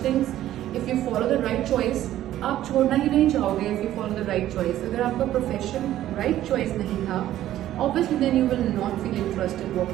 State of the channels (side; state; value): left; quieter; 13.1 dB